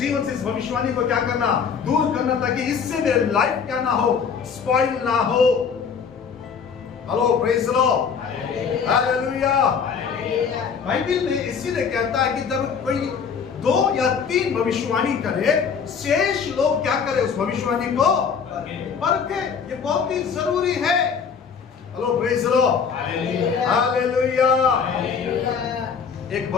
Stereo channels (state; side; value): quieter; right; 6.4 dB